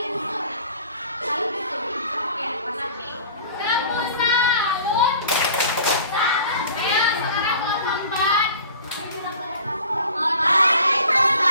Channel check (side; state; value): both; inverted; correlation -0.45